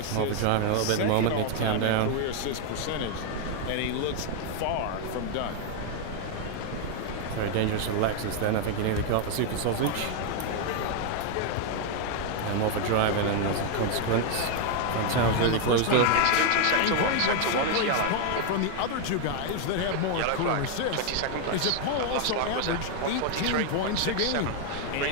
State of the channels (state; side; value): different; both; correlation 0.00